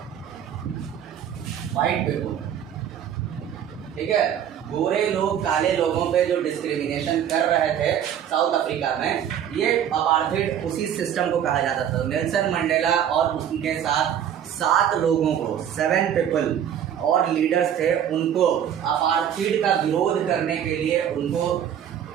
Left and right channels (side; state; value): left; quieter; 9.5 dB